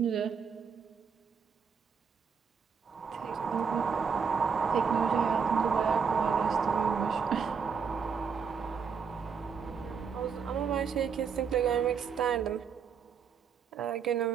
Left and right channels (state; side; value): quieter; left; 6.2 dB